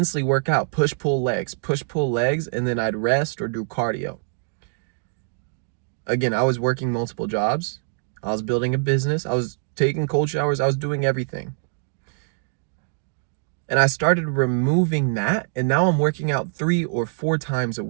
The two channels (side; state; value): left; silent; digital silence